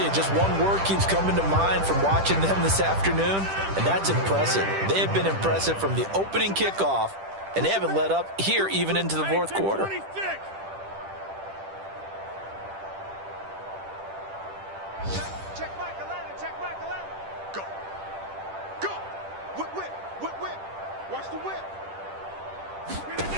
you, just one word keeps coming to mind from watching them this afternoon, and that's impressive. They have been impressive from the opening kickoff, and they haven't let up here even into the 4th quarter. Check Mike 11.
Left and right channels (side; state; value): left; late; 10 ms